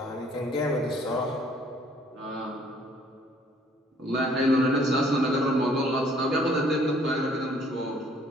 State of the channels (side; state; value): both; normal; correlation 0.60